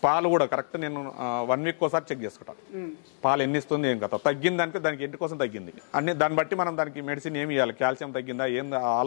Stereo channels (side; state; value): right; silent; 59 dB below the other